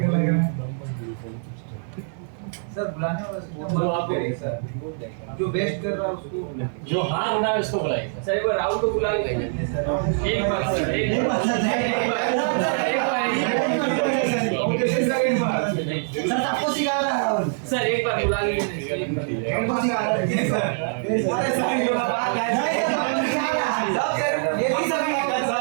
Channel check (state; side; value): silent; left; 63 dB below the other